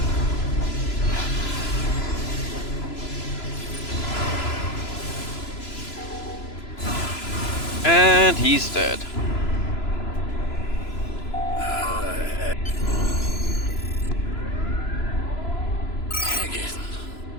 And he's dead. Hagen.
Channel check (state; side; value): late; right; 3.0 ms